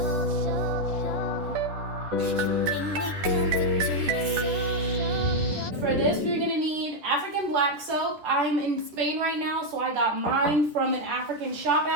For this, we're gonna need African black soap. I'm in Spain right now, so I got mine from an African shop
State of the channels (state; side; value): late; left; 10 ms